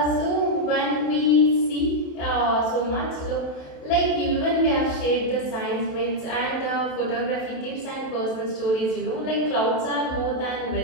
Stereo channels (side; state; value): right; late; 27 ms